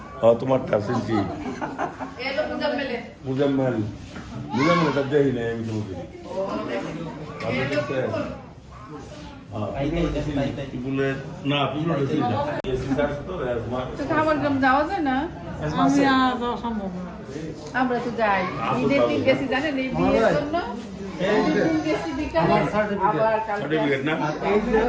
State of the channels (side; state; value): both; identical; correlation 1.00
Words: তোমার শুনছি। মুজাম্মেল এটা দেখি না আমি তোমাকে। না খাবার গ্রাম যাওয়া যায় না? আমি যাওয়া সম্ভব না। আমরা তো যাই। ঈদের দিন গেছি জানেন এই বিয়ের জন্য। ঈদের দিন গেছি বিকালে, আবার কালকে সার্টিফিকেট না?